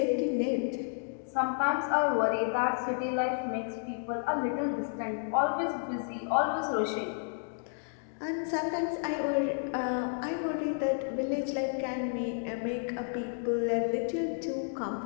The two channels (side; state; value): right; silent; digital silence